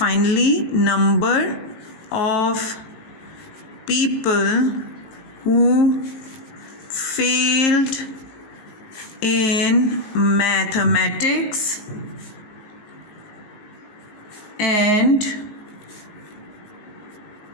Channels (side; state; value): right; late; 19 ms